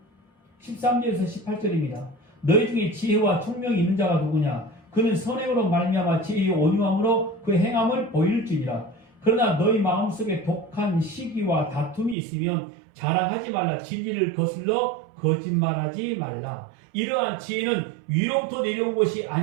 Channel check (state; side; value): drops out; left; at 12.2 s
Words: 13절에서 18절입니다. 너희 중에 지혜와 총명이 있는 자가 누구냐? 그는 선행으로 말미암아 지혜의 온유함으로 그 행함을 보일지니라. 그러나 너희 마음속에 독한 시기와 다툼이 있으면 자랑하지 말라. 진리를 거슬러 거짓말하지 말라. 이러한 지혜는 위로부터 내려온 것이